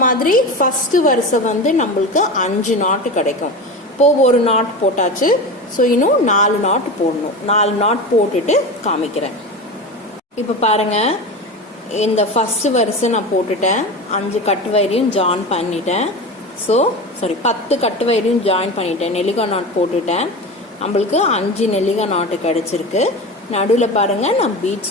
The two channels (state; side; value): normal; both; correlation 0.26